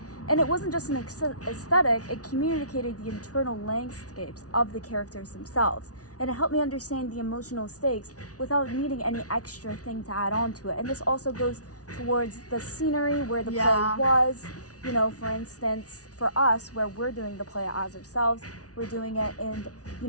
And it wasn't just an aesthetic, it communicated the internal landscapes of the characters themselves. And it helped me understand the emotional stakes without needing any extra thing to add on to it. And this also goes towards the scenery where the play was. For instance, for us, where we're doing the play as ourselves, we're doing it in,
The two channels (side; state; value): right; late; 0.68 ms